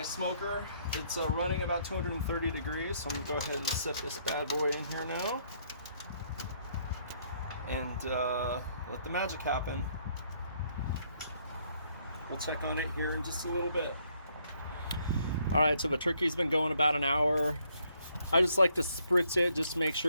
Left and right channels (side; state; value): both; inverted; correlation -0.69